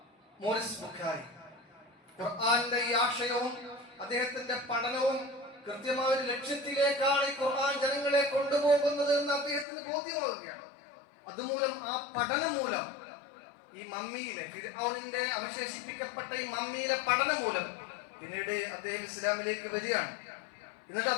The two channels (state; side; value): drops out; right; at 9.7 s